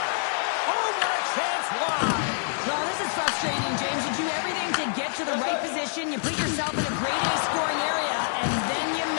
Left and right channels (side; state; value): right; silent; 61 dB below the other